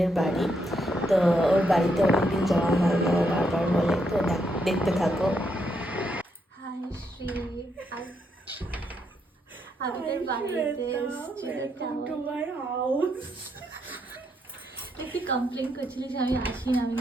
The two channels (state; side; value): normal; both; correlation 0.77